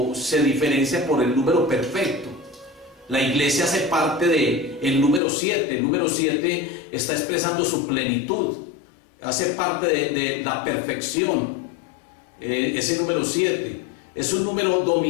se diferencia por el número perfecto. La iglesia hace parte del número 7. El número 7 está expresando su plenitud, hace parte de la perfección. Ese número 7 es un número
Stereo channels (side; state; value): right; drops out; at 5.2 s